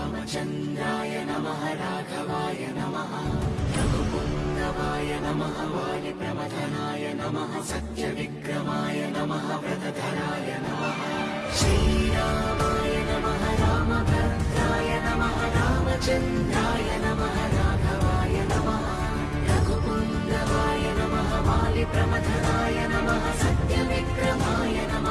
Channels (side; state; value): both; identical; correlation 1.00